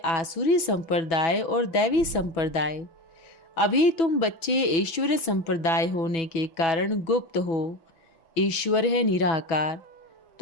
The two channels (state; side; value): late; right; 6.1 ms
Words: संप्रदाय और दैवी संप्रदाय। अभी तुम बच्चे ईश्वरीय संप्रदाय होने के कारण गुप्त हो। ईश्वर है निराकार।